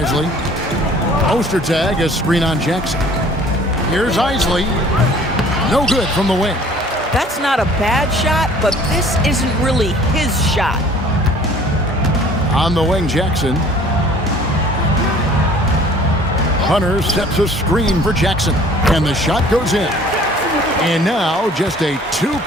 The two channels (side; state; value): both; normal; correlation 0.52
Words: Ostertag, a screen on Jackson. Here's Isley. No good from the wing. That's not a bad shot, but this isn't really his shot. On the wing, Jackson. Hunter sets a screen for Jackson. And the shot goes in. And now just a